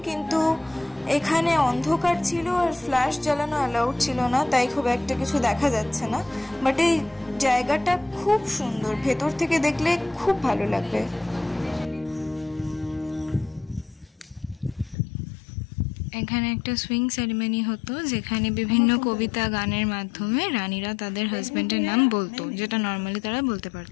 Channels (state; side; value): drops out; right; at 15.0 s